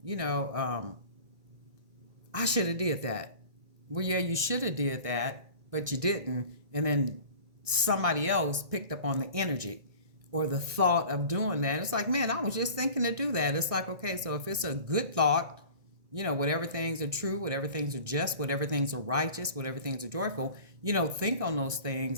I should have did that. Well, yeah, you should have did that, but you didn't. And then somebody else picked up on the energy or the thought of doing that. It's like, man, I was just thinking to do that. It's like, okay, so if it's a good thought, whatever things are true, whatever things are just, whatever things are righteous, whatever things are joyful, think on those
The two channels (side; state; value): left; late; 1.6 ms